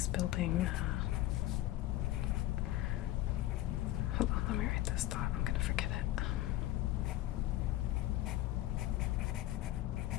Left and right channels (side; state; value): right; quieter; 15.2 dB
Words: building. Hold on, let me write this thought. I'm gonna forget it.